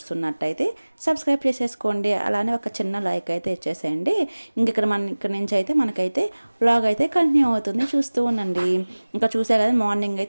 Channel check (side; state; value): both; inverted; correlation -1.00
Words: సబ్స్క్రైబ్ చేసేసుకోండి, అలానే ఒక చిన్న లైక్ అయితే ఇచ్చేసేయండి. ఇంక ఇక్కడ నుంచి అయితే మనకైతే వ్లాగ్ అయితే కంటిన్యూ అవుతుంది, చూస్తూ ఉండండి. ఇంకా చూసే కదా, మార్నింగ్